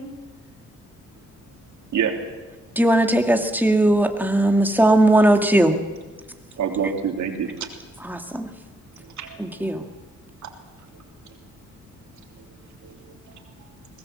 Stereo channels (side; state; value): both; normal; correlation 0.78